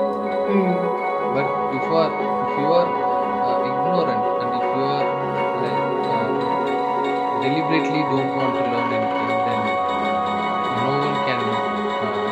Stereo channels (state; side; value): identical; both; correlation 1.00